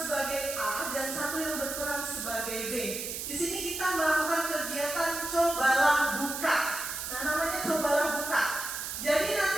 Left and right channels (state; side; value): noise; right; hiss, 5 dB below the sound